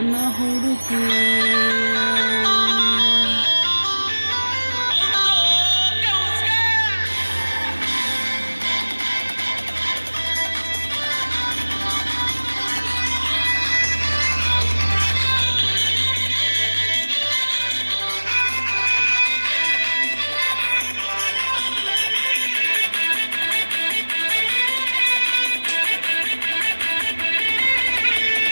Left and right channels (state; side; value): inverted; both; correlation -1.00